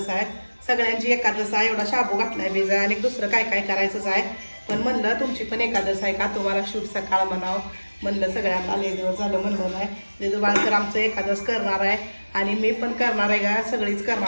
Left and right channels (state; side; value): inverted; both; correlation -1.00